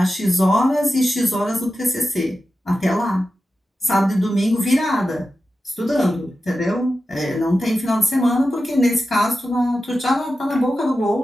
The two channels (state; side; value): normal; both; correlation 0.92